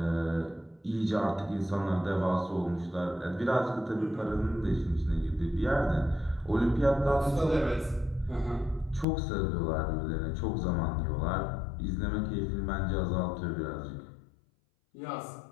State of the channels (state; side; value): drops out; right; at 9.1 s